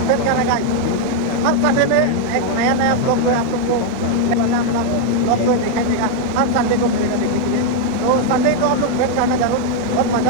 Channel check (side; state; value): both; different; correlation 0.00